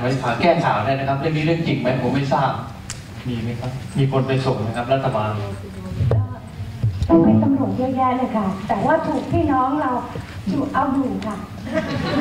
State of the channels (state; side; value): identical; both; correlation 1.00